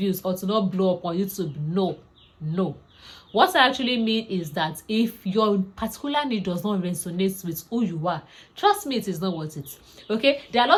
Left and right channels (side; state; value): both; identical; correlation 1.00